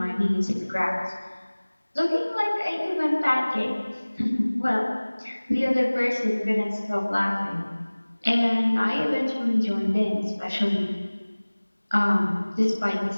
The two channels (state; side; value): inverted; both; correlation -1.00